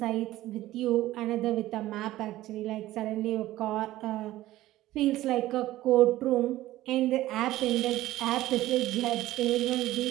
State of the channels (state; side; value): quieter; left; 15.6 dB